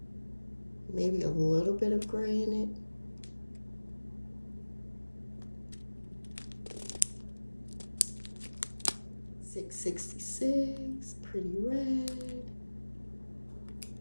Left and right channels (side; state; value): both; inverted; correlation -1.00